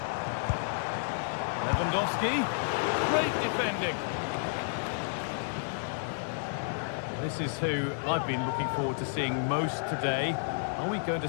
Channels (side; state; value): right; silent; 57 dB below the other